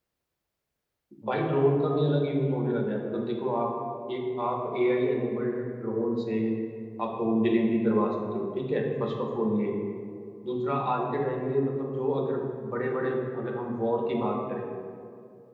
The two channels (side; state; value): both; identical; correlation 1.00